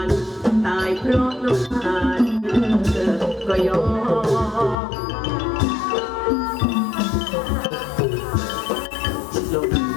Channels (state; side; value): drops out; right; at 4.8 s